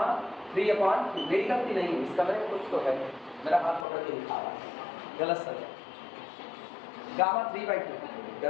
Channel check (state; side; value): drops out; right; at 3.9 s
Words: 3/2। मेरी गलती नहीं है, इसका मेरे कुछ तो है, मेरा हाथ पकड़ के लिखा रहा है, गलत सर। गामा 3/2